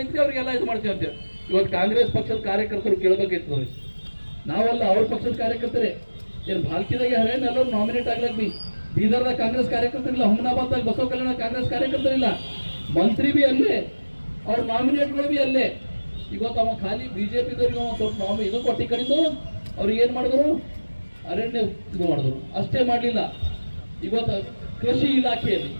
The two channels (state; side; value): inverted; both; correlation -1.00